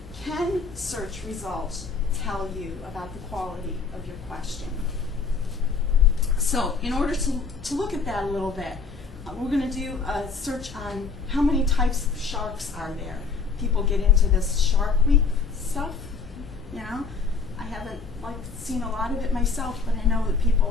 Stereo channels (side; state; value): right; quieter; 4.9 dB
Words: can search results tell you about the quality of your question? So in order to look at that a little bit, we're going to do a search on how many types of sharks are there. People get into this Shark Week stuff, you know. I haven't seen a lot of it myself, but I know that